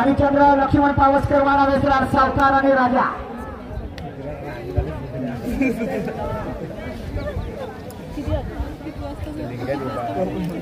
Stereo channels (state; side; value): identical; both; correlation 1.00